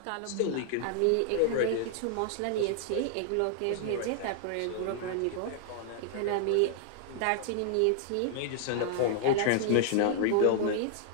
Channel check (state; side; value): different; both; correlation 0.00